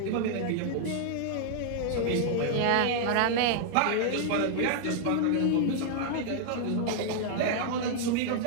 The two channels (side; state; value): both; different; correlation -0.01